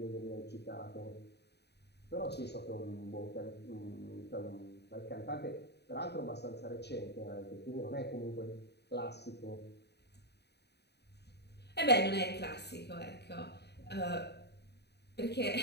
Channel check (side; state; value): right; late; 0.48 ms